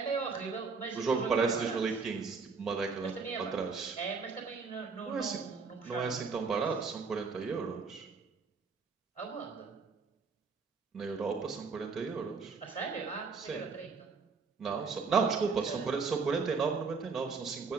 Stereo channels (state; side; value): quieter; left; 4.9 dB